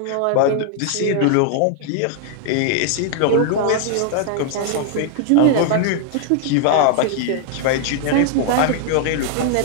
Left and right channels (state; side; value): different; both; correlation 0.00